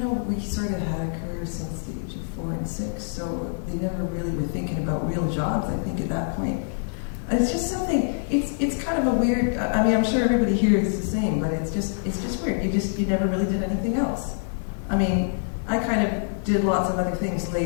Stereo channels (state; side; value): silent; right; 58 dB below the other